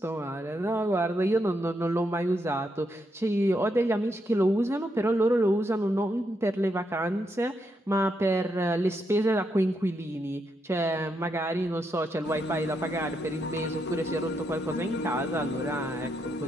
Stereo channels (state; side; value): normal; both; correlation 0.80